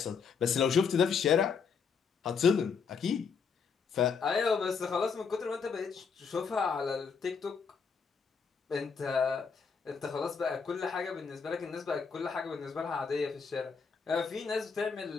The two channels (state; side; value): quieter; right; 5.8 dB